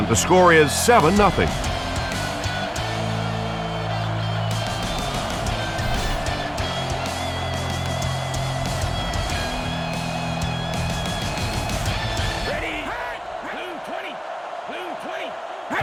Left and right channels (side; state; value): both; identical; correlation 1.00